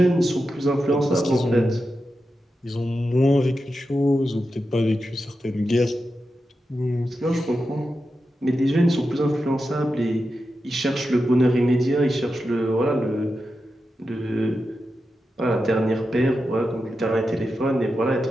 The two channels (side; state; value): both; normal; correlation 0.90